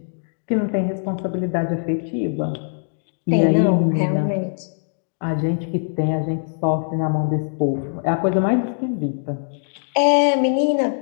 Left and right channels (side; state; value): right; silent; digital silence